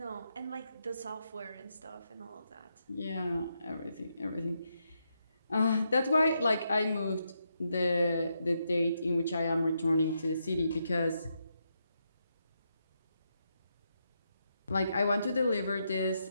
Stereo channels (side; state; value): both; inverted; correlation -0.82